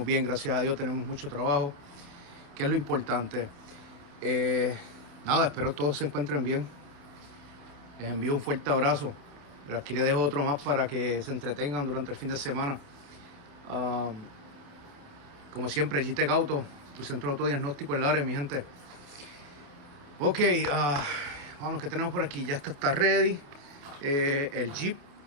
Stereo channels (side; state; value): left; late; 28 ms